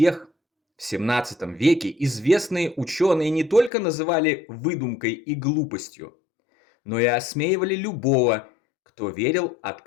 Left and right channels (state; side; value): drops out; right; at 3.7 s